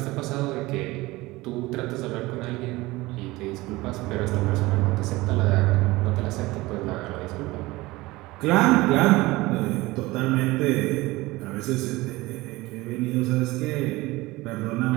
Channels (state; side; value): quieter; left; 20.4 dB